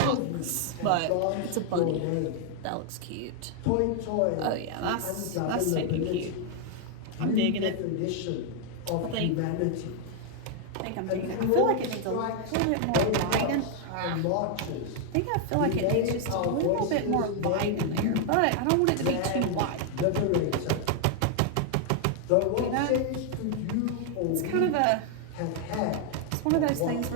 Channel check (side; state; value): both; different; correlation 0.00